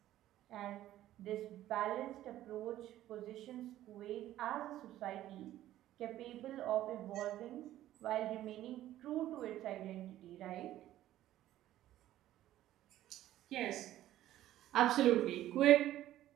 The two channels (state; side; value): quieter; left; 13.6 dB